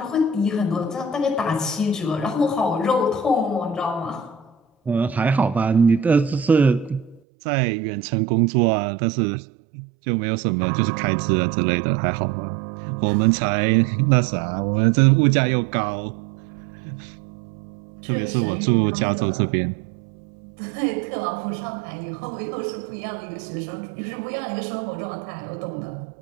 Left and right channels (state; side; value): drops out; left; at 7.2 s